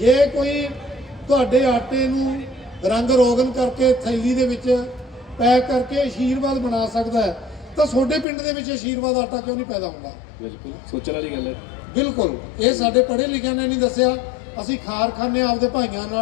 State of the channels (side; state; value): right; drops out; at 8.2 s